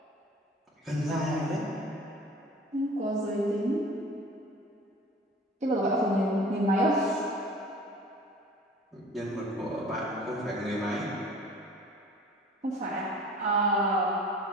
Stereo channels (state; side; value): normal; both; correlation 0.45